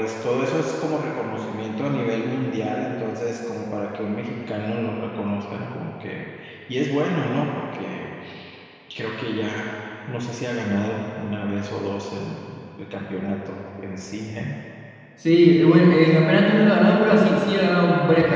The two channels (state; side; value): identical; both; correlation 1.00